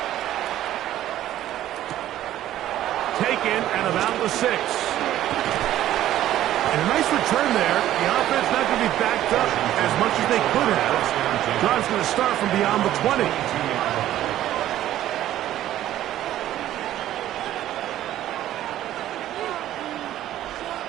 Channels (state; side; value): quieter; left; 13.0 dB